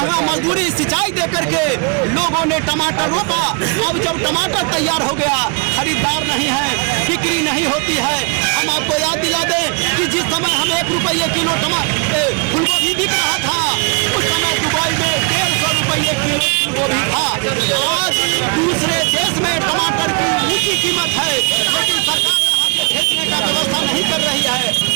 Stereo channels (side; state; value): left; quieter; 34.0 dB